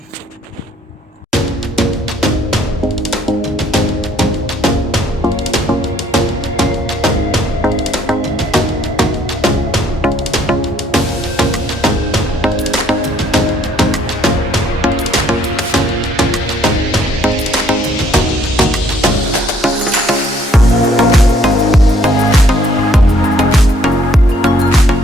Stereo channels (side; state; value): both; normal; correlation 0.64